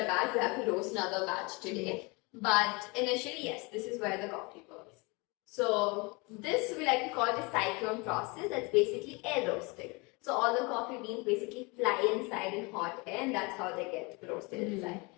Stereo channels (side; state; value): right; quieter; 27.8 dB